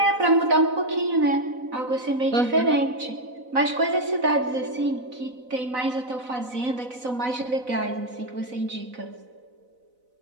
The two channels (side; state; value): left; late; 4.0 ms